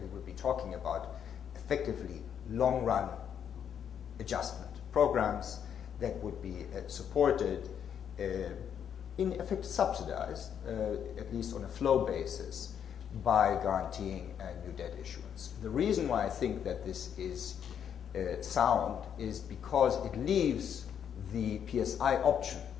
be talking about effectively long-run adjustment programs that would be supported, in effect subsidized, at least on a flow basis, by guaranteeing new debt issuance. The reason why I think that this is sound is because it leaves the PSI option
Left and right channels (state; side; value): quieter; right; 8.5 dB